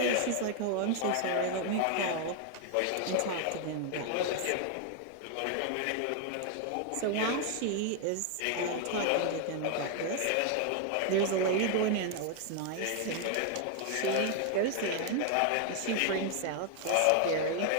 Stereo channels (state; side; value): different; both; correlation 0.00